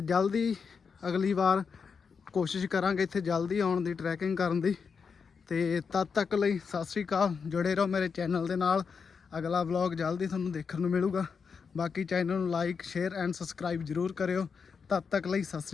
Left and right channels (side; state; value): right; quieter; 5.8 dB